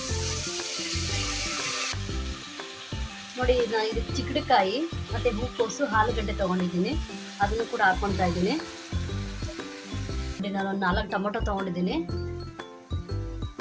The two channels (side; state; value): both; identical; correlation 1.00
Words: ನೋಡಿ, ನಾನು ಇದಕ್ಕೆ ಚಿಕ್ಕಡಿಕಾಯಿ ಮತ್ತು ಹೂಕೋಸು, ಆಲೂಗಡ್ಡೆ ತೊಗೊಂಡಿದ್ದೀನಿ, ಅದನ್ನು ಕೂಡ ಹಾಕ್ಕೊತಾ ಇದ್ದೀನಿ. ನೋಡಿ, ನಾನು ಒಂದು 4 ಟೊಮೊಟೊ ತೊಗೊಂಡಿದ್ದೀನಿ.